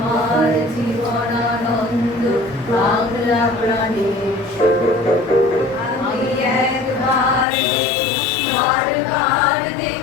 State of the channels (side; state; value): right; drops out; at 7.5 s